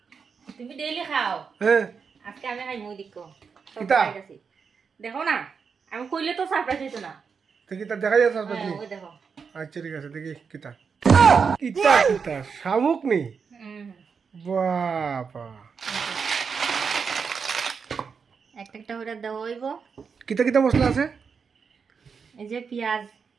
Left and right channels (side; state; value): left; quieter; 5.9 dB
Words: তুমি ডেইলি খাও, হ্যাঁ আজকে আমি খাই মুই দেখো কিতা? দেখো না, আমি কইলে তো সারপ্রাইজ হইতো না। তো কিতা দেখা যাচ্ছে আসবে তুমি? ওই দেখো। আচ্ছা ঠিক আছে দেখি কিতা কিতা কিতা শামুক নি? বাবা একটা একটা করে দেওয়া হইব। কিতা কিতা মশলা আছে? এই যে পেঁয়াজ,